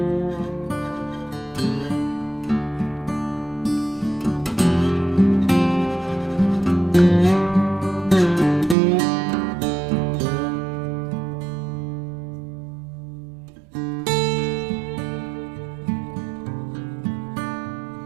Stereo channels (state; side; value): drops out; left; at 8.8 s